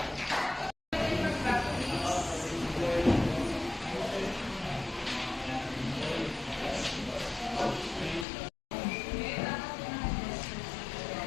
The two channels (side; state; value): right; drops out; at 8.2 s